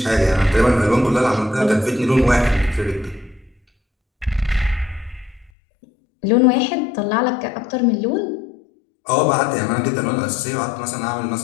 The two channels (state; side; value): drops out; right; at 5.5 s